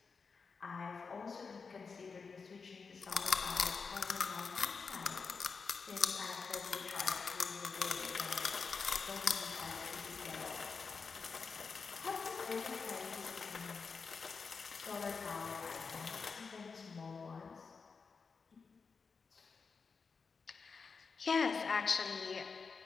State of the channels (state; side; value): quieter; right; 5.1 dB